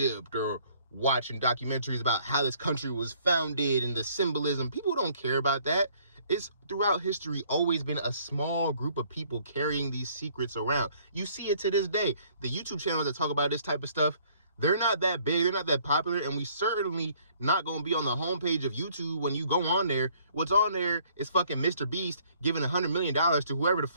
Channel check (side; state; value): both; inverted; correlation -0.61